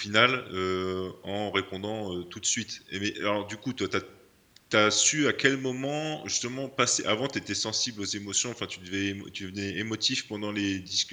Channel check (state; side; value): identical; both; correlation 1.00